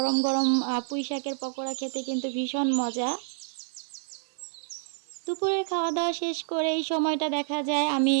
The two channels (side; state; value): left; silent; digital silence